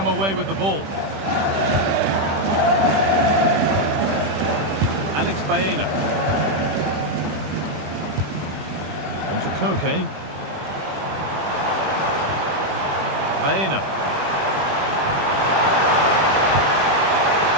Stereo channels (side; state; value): left; late; 21 ms